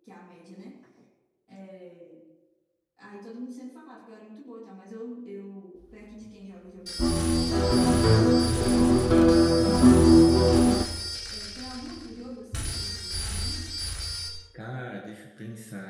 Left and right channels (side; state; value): both; identical; correlation 1.00